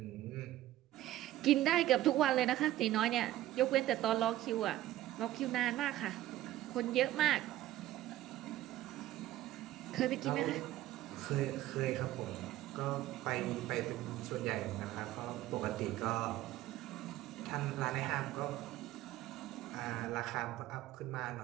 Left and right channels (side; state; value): left; quieter; 14.6 dB